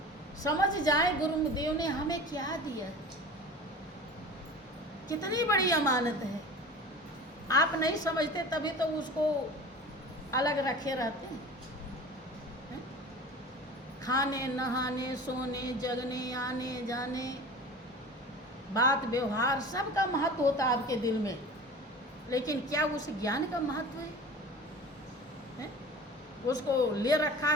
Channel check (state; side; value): normal; both; correlation 0.38